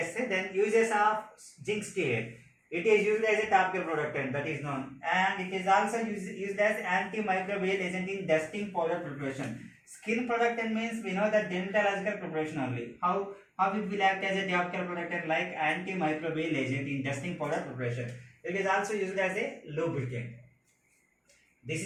Then uses of zinc stearate. It is used as a topical productant, that is known, and it is also used as antimicrobial agent in dusting powder preparation. Skin productant means we know that dermatological preparation only. How it will act as a topical productant like antimicrobial agent in dusting powder preparation. It is also used as a lubricant. This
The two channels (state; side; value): identical; both; correlation 1.00